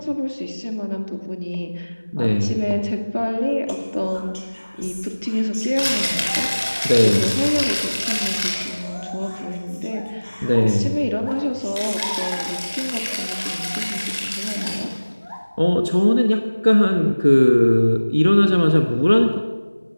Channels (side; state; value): both; inverted; correlation -1.00